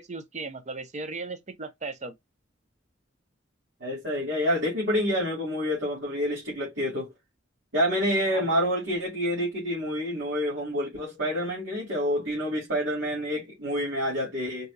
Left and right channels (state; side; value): normal; both; correlation 0.13